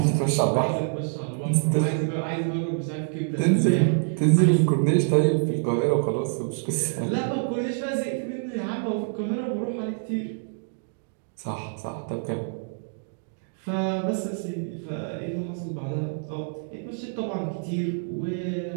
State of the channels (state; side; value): silent; left; digital silence